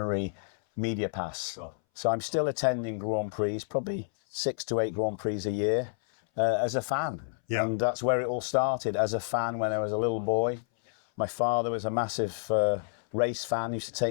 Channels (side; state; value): right; silent; 58 dB below the other